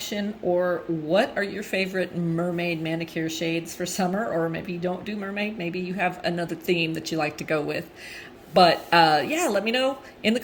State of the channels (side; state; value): both; identical; correlation 1.00